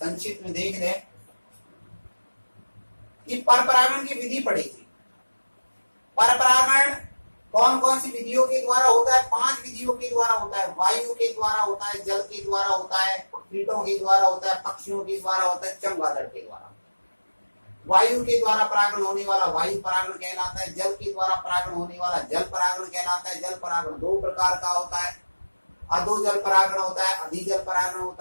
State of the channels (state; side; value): inverted; both; correlation -1.00